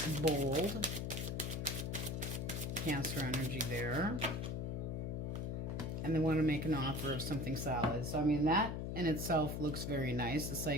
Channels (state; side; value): noise; left; hum, 3 dB below the sound